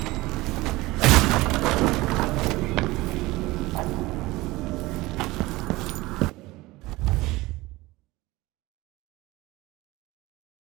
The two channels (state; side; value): quieter; left; 20.2 dB